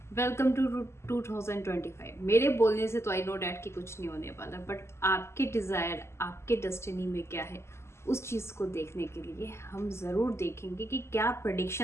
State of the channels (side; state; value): right; late; 0.13 ms